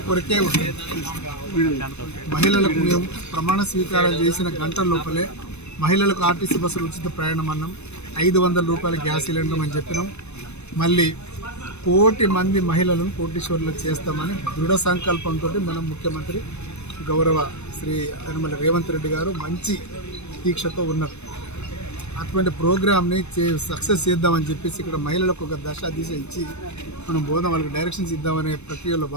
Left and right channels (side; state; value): right; late; 0.81 ms